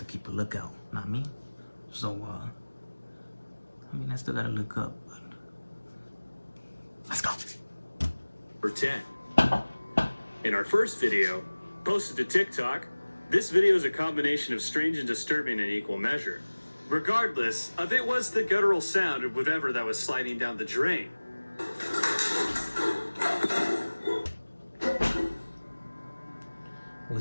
keep a lookout, not me. So, I mean, I still gotta look up, but let's go. Number 10. In our first video, posted to TikTok, this video is a combination of strange and disturbing in equal measure. Regardless of it was the guttural sound of whatever that was sliding down the drain.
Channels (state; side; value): inverted; both; correlation -1.00